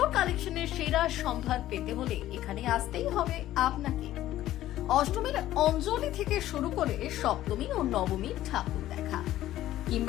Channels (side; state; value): right; quieter; 13.9 dB